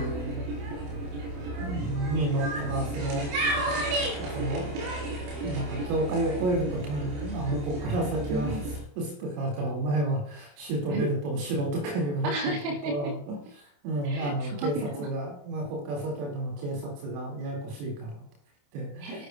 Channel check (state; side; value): late; left; 28 ms